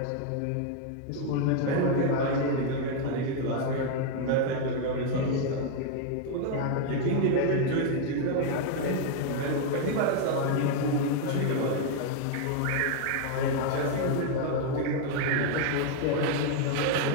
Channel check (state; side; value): different; both; correlation 0.00